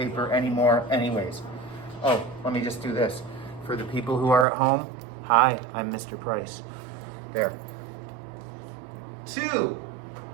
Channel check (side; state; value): left; drops out; at 4.5 s